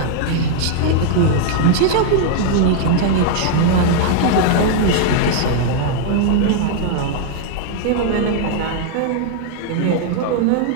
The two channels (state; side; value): different; both; correlation 0.00